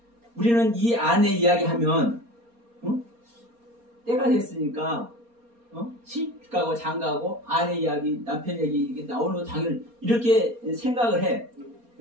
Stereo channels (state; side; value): late; left; 4.3 ms